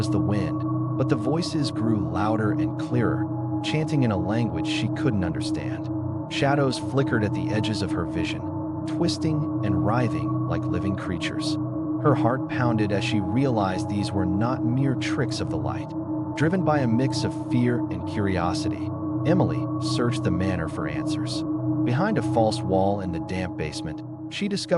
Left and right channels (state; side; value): identical; both; correlation 1.00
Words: the wind, but the voices grew louder and clearer, chanting in a language she couldn't understand. Shadows flickered at the edges of her vision, twisting and writhing like living creatures. Her heart pounded as she realized these were not mere tricks of the light. Driven by a mix of fear and curiosity, Emily searched the manor for answers. Behind a false wall in the damp basement, she